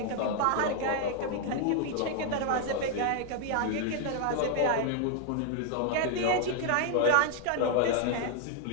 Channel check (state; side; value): different; both; correlation 0.00